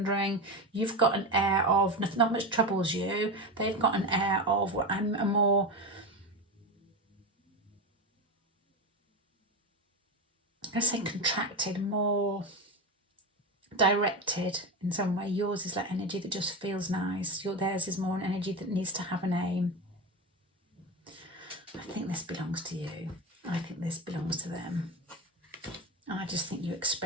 You've got an air of not much troubles you. They've got an air of I'm a more, I'm going to say contracted, more directed in some way. Yours is like energy that just feels nice. Theirs is more an energy that needs to have an aim. I think this belongs to you. I think this belongs to them. I just think you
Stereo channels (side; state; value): both; normal; correlation 0.19